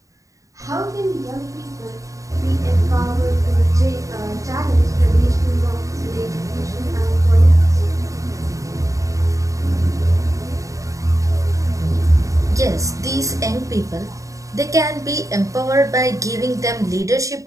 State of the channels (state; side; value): late; left; 0.16 ms